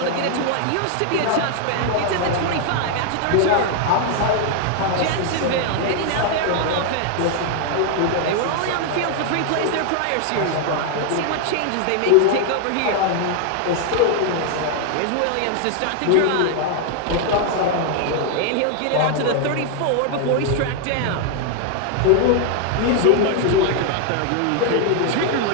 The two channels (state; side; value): different; both; correlation 0.00